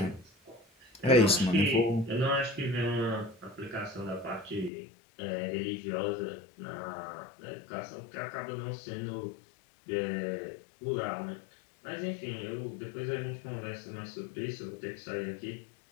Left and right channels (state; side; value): drops out; right; at 4.7 s